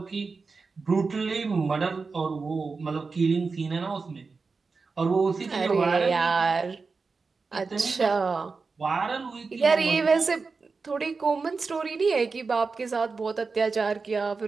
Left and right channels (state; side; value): quieter; left; 4.5 dB